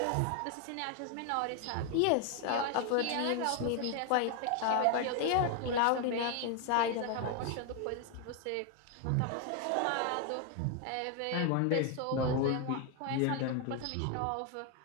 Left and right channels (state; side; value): different; both; correlation 0.01